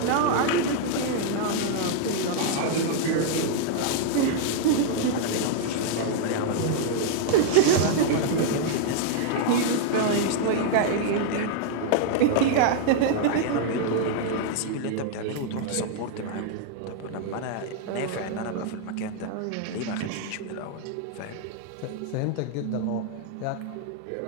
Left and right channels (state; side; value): different; both; correlation -0.01